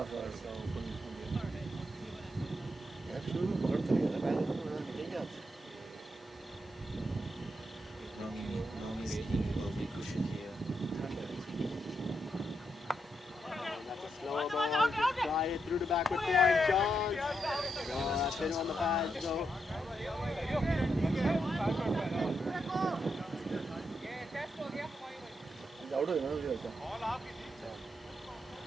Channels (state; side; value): normal; both; correlation 0.82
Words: Nomi's team will be cushion here. That's a slower ball, just try it through the backward point, chance. No, that's in on the pads, so.